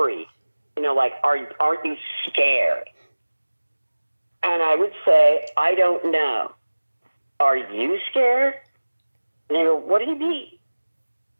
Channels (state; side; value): inverted; both; correlation -1.00